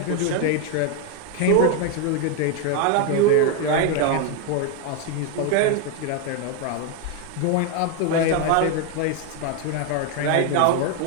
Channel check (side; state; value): both; different; correlation 0.01